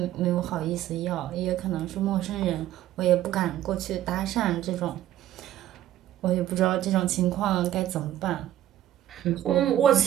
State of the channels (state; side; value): quieter; left; 12.8 dB